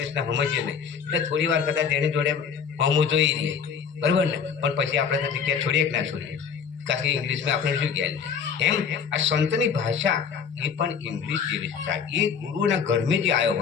સમજીએ નહીં, એટલે થોડી વાર કદાચ એની જોડે હોમું જોઈ રહીએ, બરાબર ને? પણ પછી આપણે તો જગ્યા છોડીએ કે ના છોડીએ, કારણ કે ઇંગ્લિશમાં આપણે શું કહે. એમ આ સંતની ભાષા એ પણ ઇંગ્લિશ જેવી છે. એ ગુરુના ઘરમાં જે આવ્યો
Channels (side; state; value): right; quieter; 6.7 dB